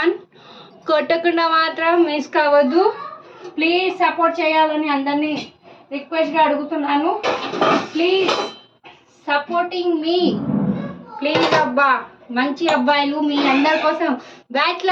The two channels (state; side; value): identical; both; correlation 1.00